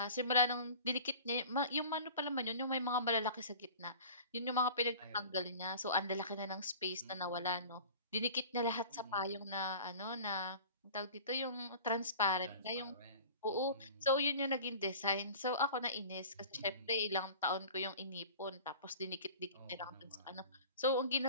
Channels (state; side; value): inverted; both; correlation -0.40